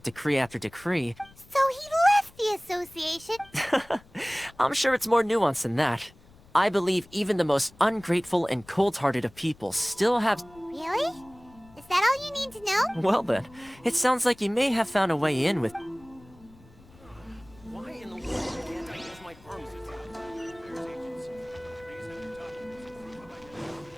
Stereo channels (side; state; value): left; noise; rumble, 25 dB below the sound